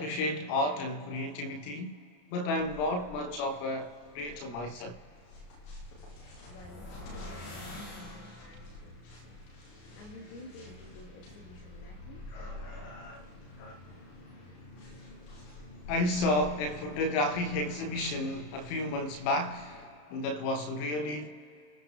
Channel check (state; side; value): late; right; 33 ms